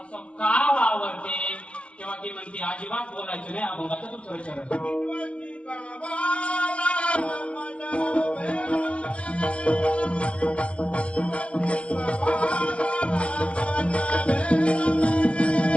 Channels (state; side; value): late; right; 0.061 ms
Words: असं का वावरते? तेव्हा ती म्हणते अजिबात बोलायचं नाही. अभंगाचं दुसरं चरण